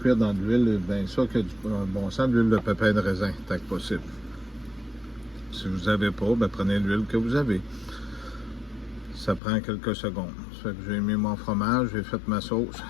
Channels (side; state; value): right; drops out; at 9.4 s